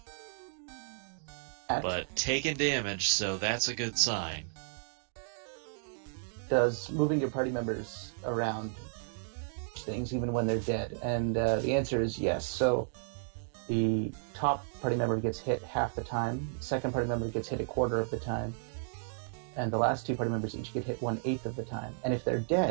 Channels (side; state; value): left; silent; digital silence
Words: but taking damage, so that's a good sign. does moving your party members around things even when they're dead? And the answer is yes. So the top party member gets hit half the time, the second party member gets hit a quarter of the time, and the last two party members each get hit 1/8 of the time. And if they're